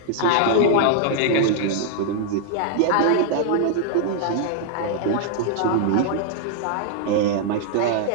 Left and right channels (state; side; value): different; both; correlation -0.01